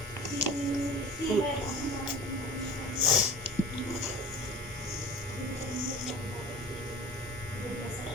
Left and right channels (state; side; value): normal; both; correlation 0.39